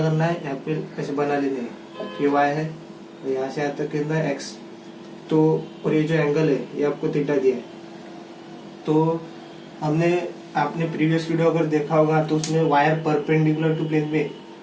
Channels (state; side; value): identical; both; correlation 1.00